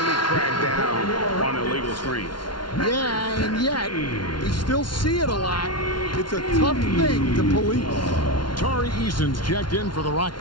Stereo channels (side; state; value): right; late; 0.71 ms